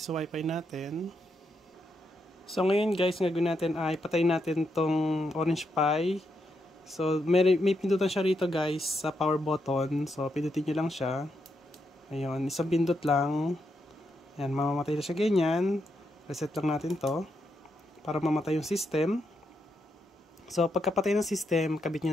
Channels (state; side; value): normal; both; correlation 0.81